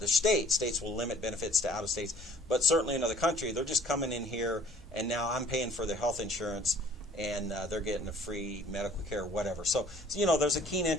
states. States will limit benefits to out of states, but certainly in another country, they're just coming in here, and now I'm paying for their health insurance, and they're getting a free medical care, whatever. So there's a keen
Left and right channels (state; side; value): normal; both; correlation 0.54